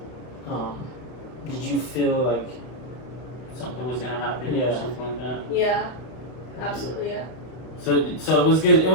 did you feel like Something was gonna happen, or something like that. Yeah, absolutely, yeah. So it was good. It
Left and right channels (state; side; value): late; right; 32 ms